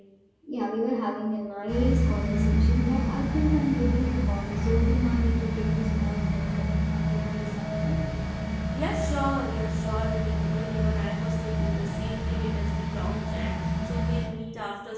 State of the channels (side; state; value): both; identical; correlation 1.00